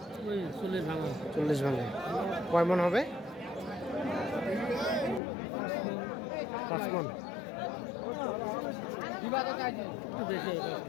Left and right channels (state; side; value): drops out; right; at 5.2 s